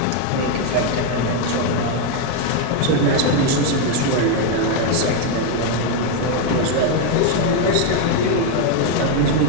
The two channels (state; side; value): different; both; correlation 0.01